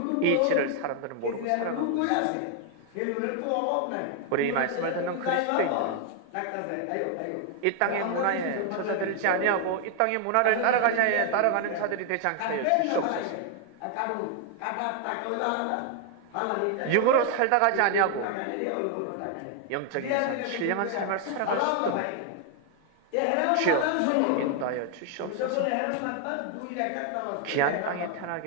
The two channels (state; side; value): different; both; correlation 0.00